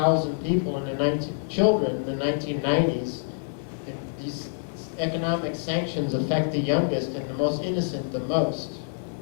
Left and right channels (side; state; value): right; silent; digital silence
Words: people children in the 1990s, these economic sanctions affect the youngest and the most innocent the most.